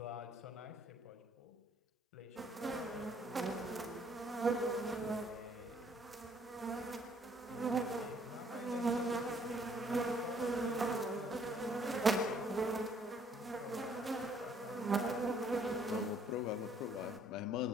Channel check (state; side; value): normal; both; correlation 0.64